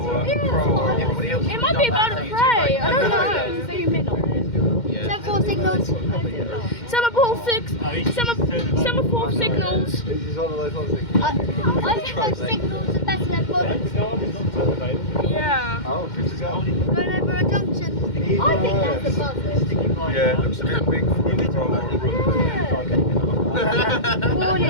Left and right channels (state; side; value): late; right; 2.1 ms